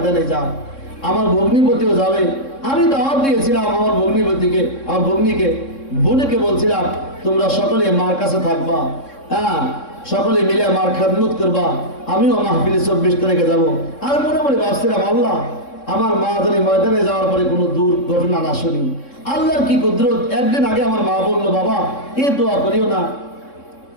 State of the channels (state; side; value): late; right; 3.6 ms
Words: যায়, আমার ভগ্নিপতিও যাবে। আমি দাওয়াত দিয়েছিলাম আমার ভগ্নিপতিকে, আমার ভগ্নিকে, বোনকে বলছিলাম তোমরা সকলে মার কাছে থাকবা, হ্যাঁ সকলে মিলে মার খেদমত করবা, আমিও মাহফিলে 24 তারিখে যাবো। আর মনে মনে ভাবছিলাম আল্লাহ আমার মা জানি ময়দানে যাওয়ার পরে কোনো দুর্ঘটনা না শুনি। আল্লাহর কি কুদরত, একদিন আগে আমার মা বললো বাবা এ দোয়া করিও না,